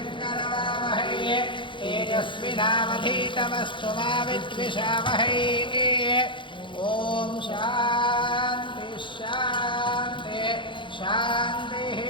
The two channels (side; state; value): right; late; 0.24 ms